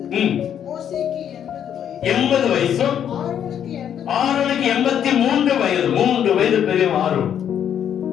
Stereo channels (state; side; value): quieter; right; 9.3 dB